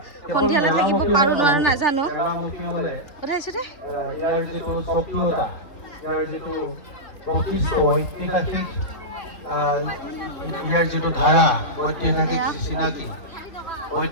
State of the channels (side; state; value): right; late; 3.3 ms